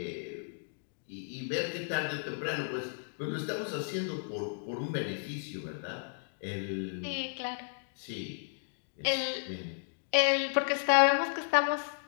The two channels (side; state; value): right; silent; digital silence